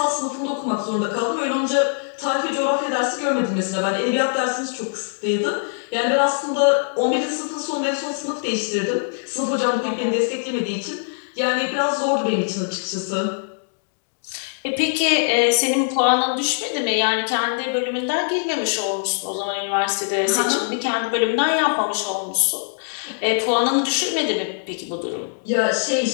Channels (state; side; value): silent; right; 64 dB below the other